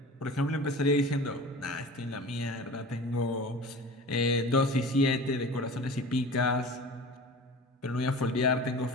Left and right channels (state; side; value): normal; both; correlation 0.37